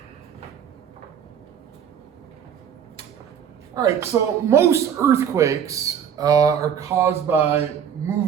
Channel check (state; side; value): quieter; left; 8.3 dB